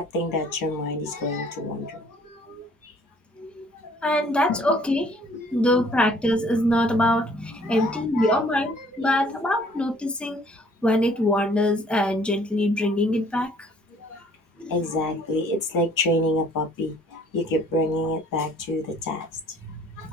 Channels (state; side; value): normal; both; correlation 0.58